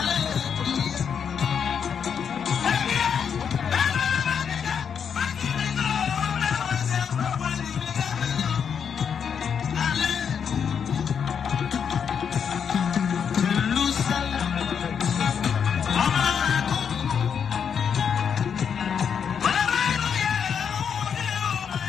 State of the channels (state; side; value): quieter; right; 7.3 dB